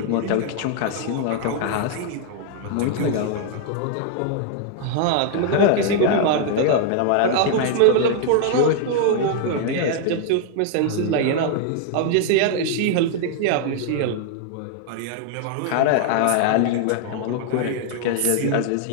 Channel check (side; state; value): both; different; correlation 0.00